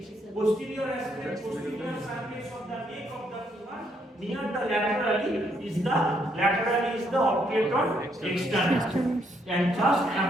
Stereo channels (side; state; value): both; normal; correlation 0.73